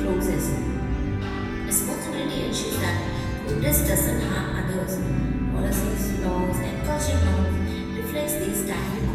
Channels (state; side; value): identical; both; correlation 1.00